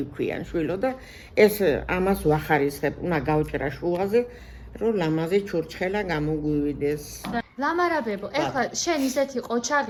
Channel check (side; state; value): both; identical; correlation 1.00